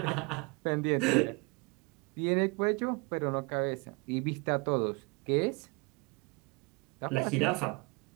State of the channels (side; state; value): left; quieter; 28.2 dB